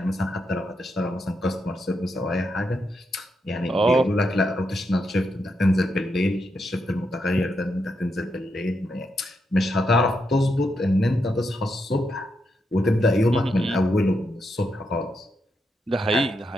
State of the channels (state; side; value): normal; both; correlation 0.83